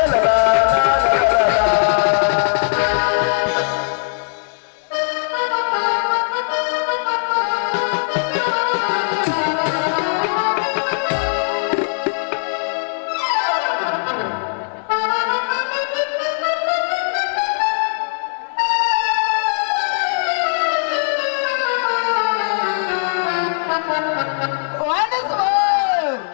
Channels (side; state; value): right; silent; 66 dB below the other